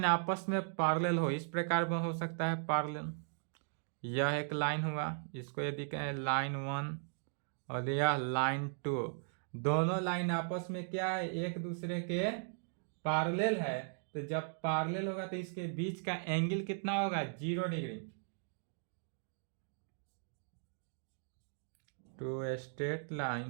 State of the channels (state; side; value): silent; left; digital silence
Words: आपस में पैरेलल हो, इस प्रकार में हो सकता है पैरेलल, यह एक लाइन हुआ, इसको यदि कहें लाइन 1 और यह लाइन 2, दोनों लाइन आपस में क्या है, एक दूसरे के पैरेलल है। तो जब पैरेलल होगा तो इसके बीच का एंगल कितना होगा, 0 degree. Two straight